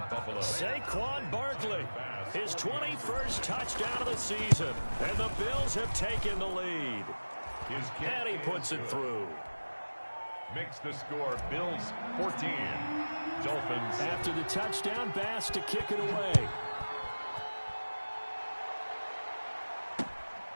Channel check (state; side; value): inverted; both; correlation -1.00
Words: Buffalo. Saquon Barkley, his 21st touchdown of the season, and the Bills have taken the lead. And he puts it through. Makes the score Bills 14, Dolphins. After the touchdown, Bass to kick it away.